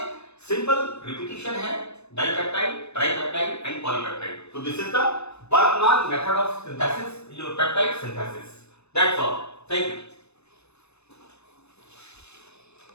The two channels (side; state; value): right; late; 0.80 ms